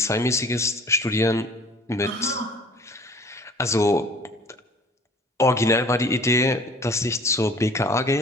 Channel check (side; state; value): both; normal; correlation 0.49